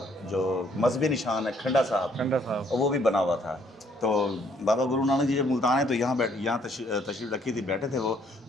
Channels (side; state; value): both; normal; correlation 0.66